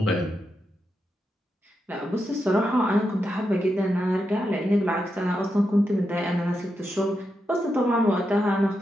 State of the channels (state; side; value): normal; both; correlation 0.86